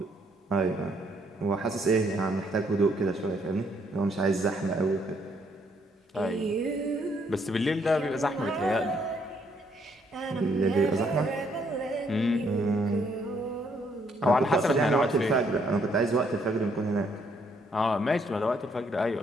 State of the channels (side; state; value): both; normal; correlation 0.70